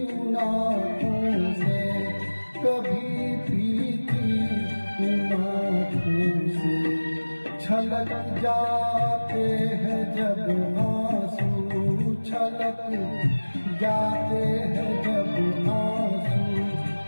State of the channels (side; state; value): both; inverted; correlation -1.00